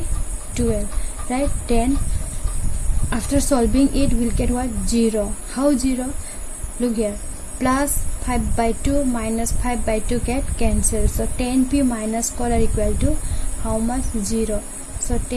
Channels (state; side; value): identical; both; correlation 1.00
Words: 12, right? Then after solving it, we'll get what? 0. How 0? Look here. Plus 5 by 2 minus 5 by 2 get cancelled. So tan p minus cot r equal to how much? 0. So